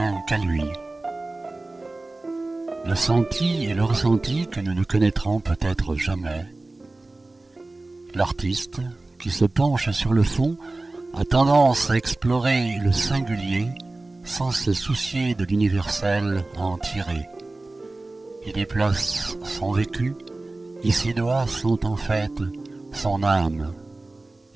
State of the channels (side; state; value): left; quieter; 3.1 dB